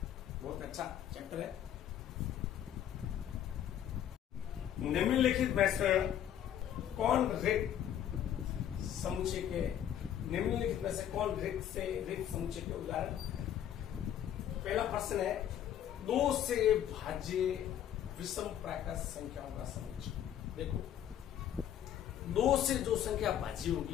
बहुत अच्छा चैप्टर है। निम्नलिखित में से कौन रिक्त समुच्चय के निम्नलिखित में से कौन रिक्त समुच्चय के उदाहरण? पहला प्रश्न है 2 से भाज्य विषम प्राकृत संख्याओं का समुच्चय। देखो 2 से जो संख्या भाज्य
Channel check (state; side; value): quieter; right; 10.4 dB